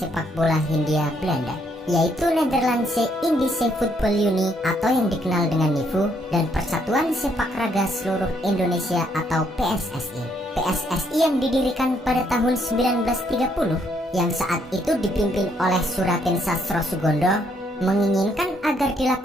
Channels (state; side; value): normal; both; correlation 0.71